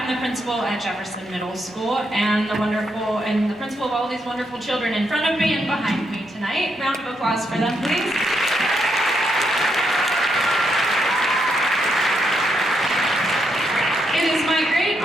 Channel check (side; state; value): both; normal; correlation 0.79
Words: the principal at Jefferson Middle School and the principal of all these wonderful children in front of me and behind me tonight. Round of applause for them, please. It is my great